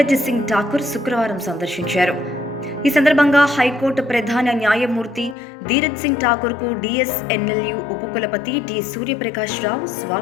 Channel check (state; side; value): drops out; right; at 5.4 s